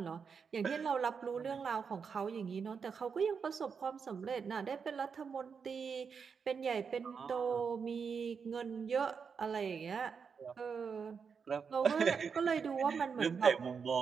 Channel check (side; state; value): left; quieter; 6.0 dB